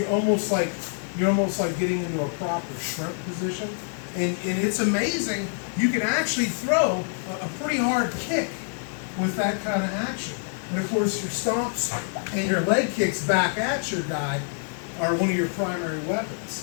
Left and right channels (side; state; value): right; silent; 61 dB below the other